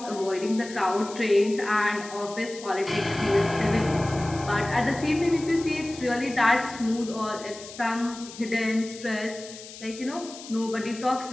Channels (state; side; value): noise; left; hiss, 15 dB below the sound